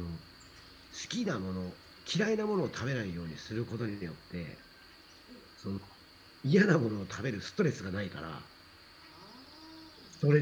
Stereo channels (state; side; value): identical; both; correlation 1.00